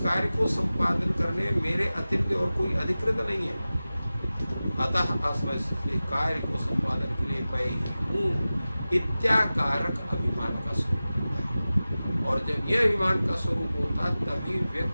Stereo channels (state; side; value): inverted; both; correlation -0.96